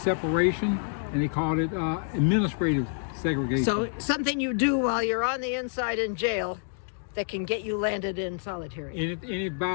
and they call it administrative segregation. So something you do while you're on the inside in jail that can get you landed in solitary. Any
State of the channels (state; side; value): silent; right; digital silence